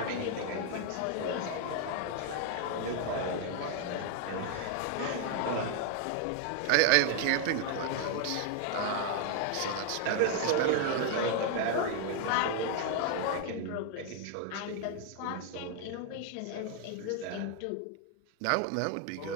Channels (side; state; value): both; different; correlation 0.00